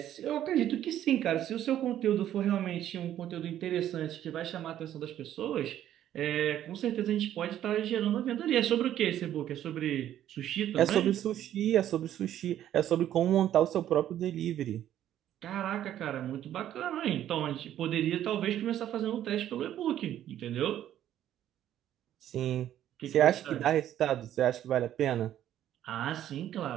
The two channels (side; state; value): left; quieter; 11.6 dB